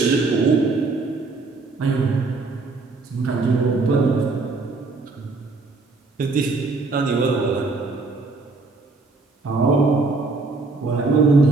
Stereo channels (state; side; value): quieter; left; 3.7 dB